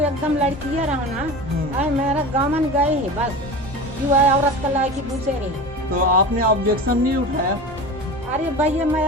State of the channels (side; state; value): both; normal; correlation 0.31